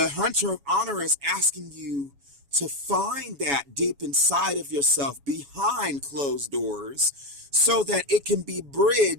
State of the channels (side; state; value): left; late; 7.1 ms